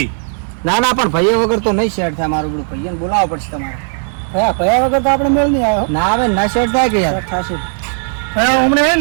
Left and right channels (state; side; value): silent; left; 70 dB below the other